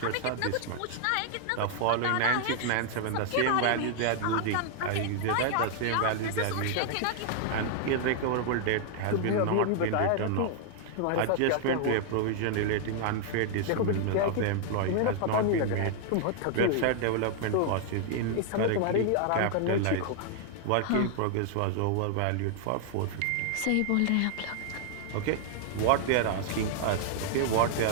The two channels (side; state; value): both; different; correlation 0.00